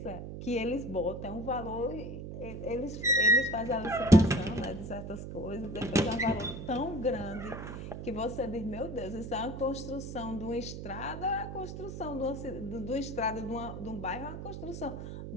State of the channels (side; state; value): right; noise; hum, 8 dB below the sound